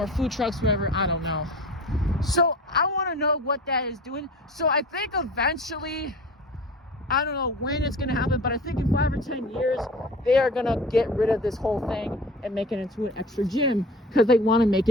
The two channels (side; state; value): both; normal; correlation 0.40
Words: food trucks, whatever, I don't know. So I want to know what that is doing. So I think eventually, I don't know when it's going to happen, but I think in 5 or 10 years, they are going to get rid of this whole thing and make it into an extra gym because they want to make